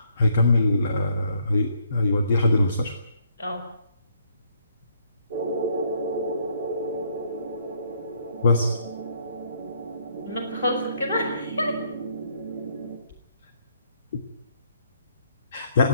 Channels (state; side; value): inverted; both; correlation -0.69